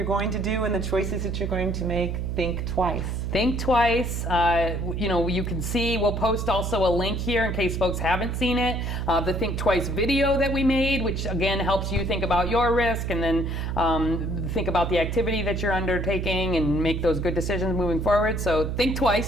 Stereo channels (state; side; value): noise; right; hum, 2 dB below the sound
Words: going to do and the choices that you're going to make, think twice. Think twice. You can see, we'll post also a link here in case folks haven't seen it, the Think Twice video that we made, which again helps you think about your risk and then think about the activity that you're undertaking and make those good decisions moving forward. So think